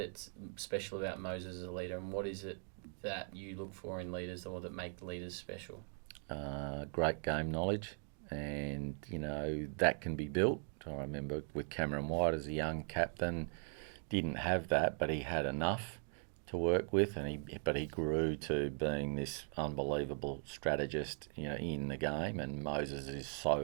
special about Moses as a leader, and what is it that you look for in leaders or that make leaders special? Great game knowledge, and that can be built. I remember with Cameron White as a young captain, didn't have that, but he had enough to work with, but he grew to being this unbelievable strategist, in the game. And Moses is so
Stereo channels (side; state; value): left; silent; 51 dB below the other